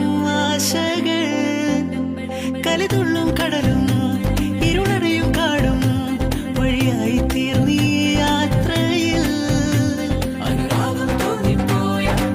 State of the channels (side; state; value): both; identical; correlation 1.00